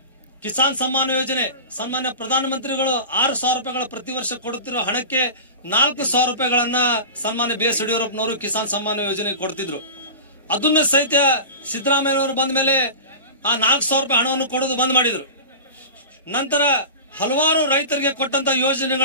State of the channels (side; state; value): both; inverted; correlation -0.32